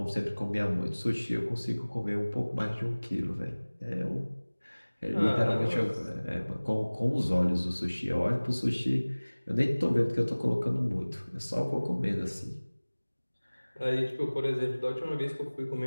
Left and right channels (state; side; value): inverted; both; correlation -1.00